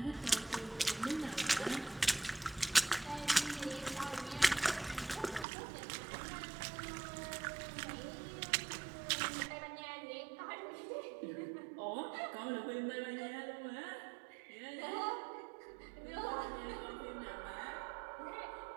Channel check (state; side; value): drops out; left; at 5.5 s